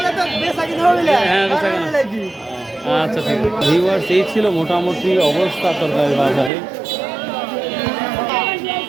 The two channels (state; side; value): drops out; left; at 6.5 s